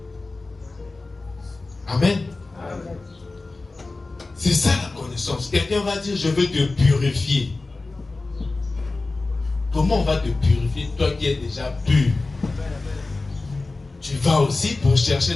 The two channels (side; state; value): right; quieter; 3.4 dB